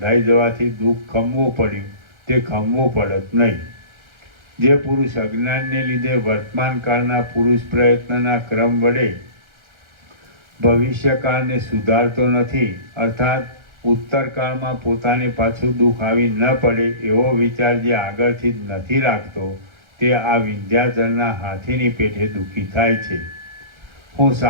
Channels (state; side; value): late; left; 1.3 ms